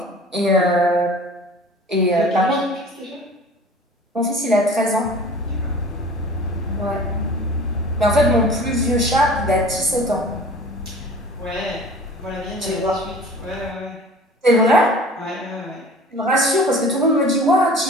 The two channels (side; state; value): both; normal; correlation 0.44